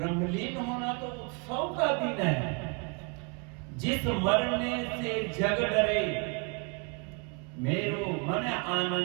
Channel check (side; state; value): left; quieter; 34.1 dB